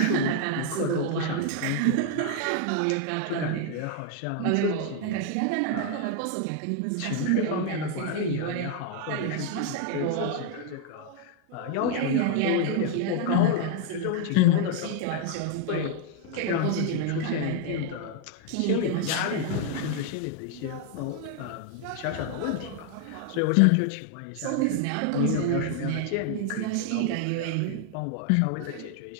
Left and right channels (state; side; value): different; both; correlation 0.00